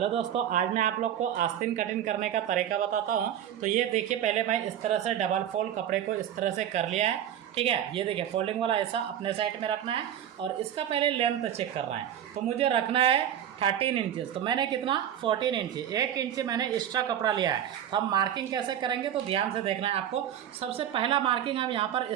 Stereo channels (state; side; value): quieter; left; 10.4 dB